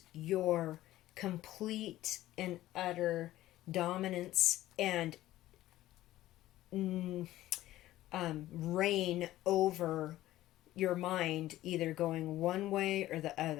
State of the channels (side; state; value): right; quieter; 15.1 dB